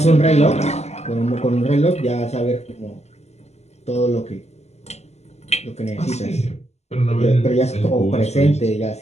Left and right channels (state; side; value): late; right; 0.32 ms